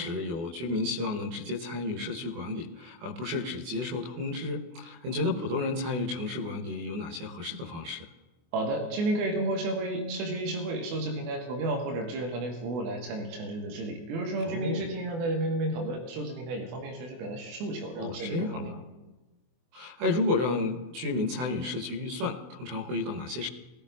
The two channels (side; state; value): left; late; 24 ms